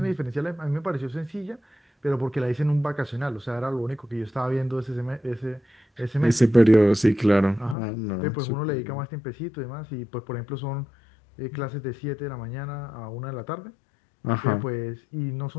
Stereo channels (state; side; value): drops out; right; at 7.8 s